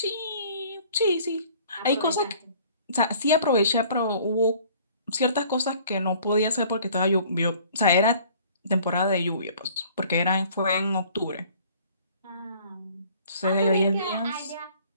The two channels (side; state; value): both; inverted; correlation -0.53